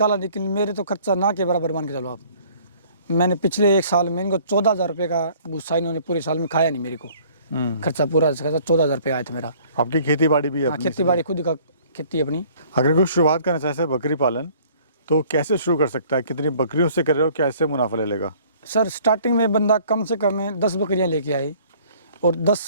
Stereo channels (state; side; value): inverted; both; correlation -0.55